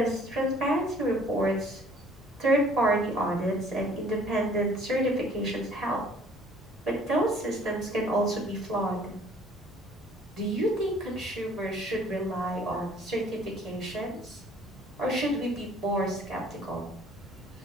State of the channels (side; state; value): both; normal; correlation 0.55